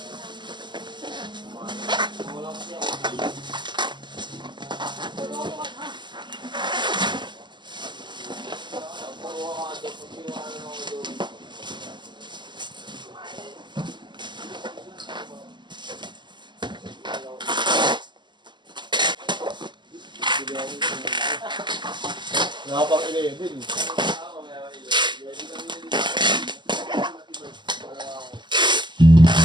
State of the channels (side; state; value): left; late; 0.22 ms